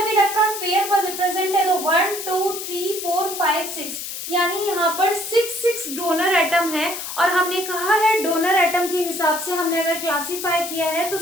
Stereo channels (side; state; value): left; noise; hiss, 7 dB below the sound